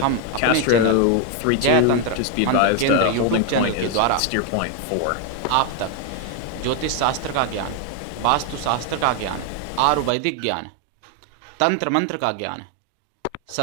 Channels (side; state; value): both; different; correlation 0.01